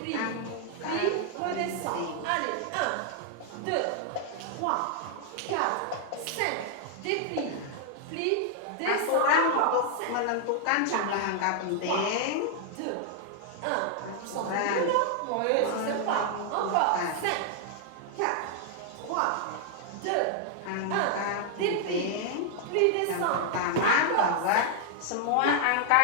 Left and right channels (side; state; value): both; different; correlation 0.00